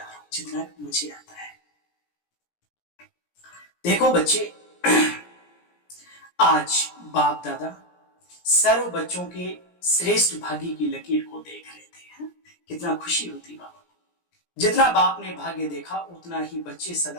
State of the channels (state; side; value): late; right; 17 ms